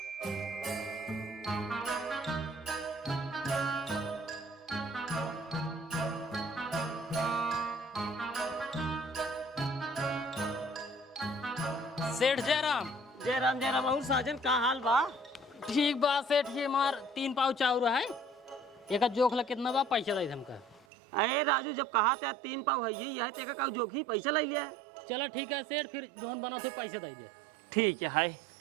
सेठ जयराम जयराम और साजन का हाल बा? ठीक बा सेठ ये मार 3 पाव चाउर है एक जोख ला कितना बा पैसा दे हमका। अरे राजू जब कहा था 3 पाव है यही है तेका का जोखी पैसा ले लिया। चलो ठीक है सेठ फिर जोन बना थे पैसे दे दे। ठीक है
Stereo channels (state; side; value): drops out; left; at 20.9 s